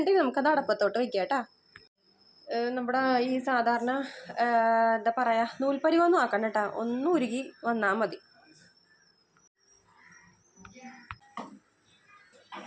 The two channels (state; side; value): identical; both; correlation 1.00